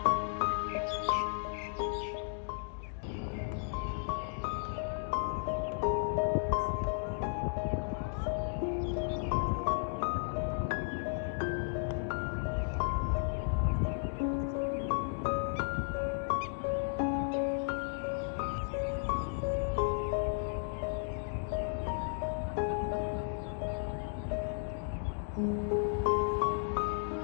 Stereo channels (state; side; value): silent; right; digital silence